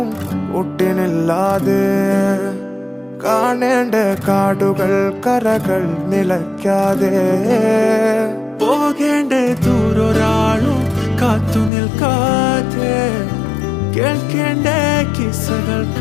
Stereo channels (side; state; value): right; drops out; at 11.7 s